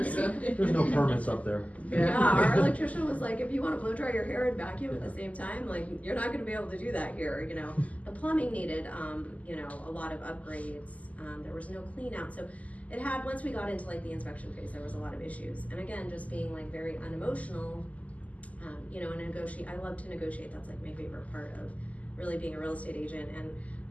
so. There's no permits up there. yeah, our electrician was like, if you want to blow dry your hair and vacuum at the same time, like, you're not going to be able to do that here. You know, the plumbing needed, you know, a lot of upgrades. There was no clean out. So it had, once we got into like the inspection phase, there was a lot of issues. And again, just being like very unemotional, you know, and I love to negotiate. That's like my favorite part of really being a real estate agent. And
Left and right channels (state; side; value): late; right; 0.072 ms